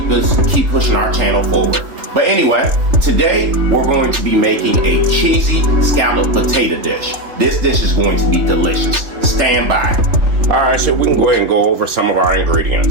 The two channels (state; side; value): late; left; 3.3 ms